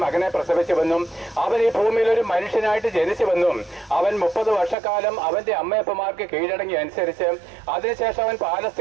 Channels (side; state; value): left; drops out; at 4.8 s